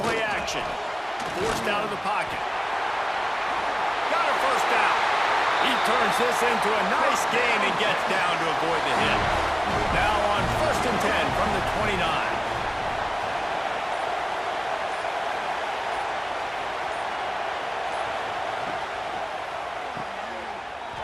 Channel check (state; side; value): identical; both; correlation 1.00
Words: action. Forced out of the pocket. Got a first down. He turns this into a nice gain and gets down to avoid the hit. Now on 1st and 10 from the 29.